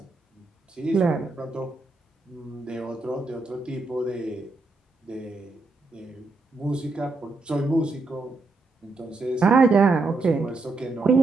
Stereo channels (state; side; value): quieter; left; 3.5 dB